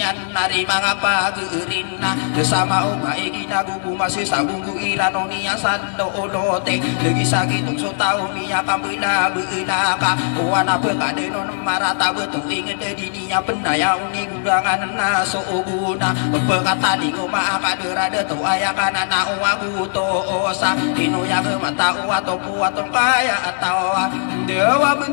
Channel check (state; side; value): silent; right; 66 dB below the other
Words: nari mangapa gerina bersama oka egina gugu masih sabunggu irano niya sando olote lagi sakit so tao miya kambila beula ka wana pekade non marata betul ingin dedi niya pendaya uni gurangan na so guna pekata di goma akaderade to ayakana na uwa buto osa ino ya ke mata uwa to puato kaya atau dewa